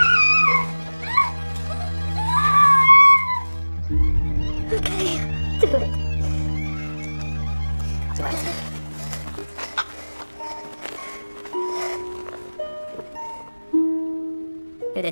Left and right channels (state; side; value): inverted; both; correlation -1.00